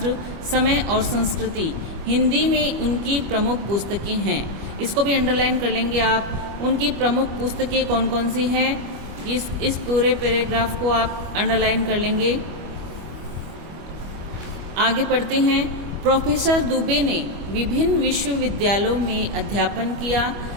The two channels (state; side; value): late; left; 25 ms